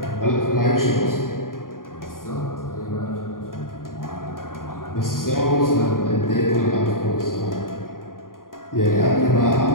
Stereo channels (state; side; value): late; right; 0.91 ms